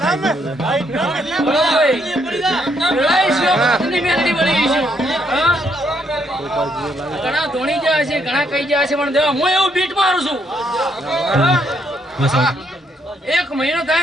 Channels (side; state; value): both; normal; correlation 0.73